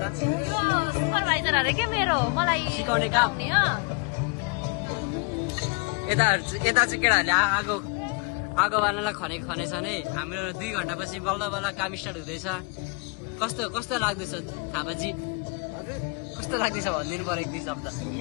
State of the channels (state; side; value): quieter; right; 31.1 dB